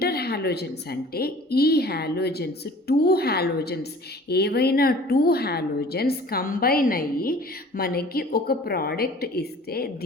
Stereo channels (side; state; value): both; normal; correlation 0.47